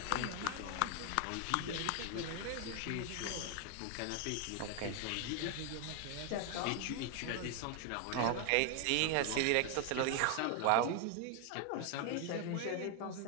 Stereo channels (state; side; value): different; both; correlation 0.00